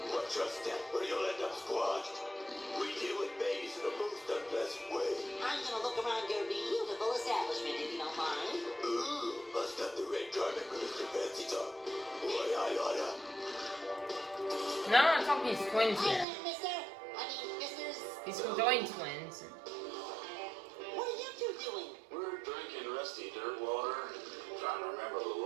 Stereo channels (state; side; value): drops out; left; at 16.2 s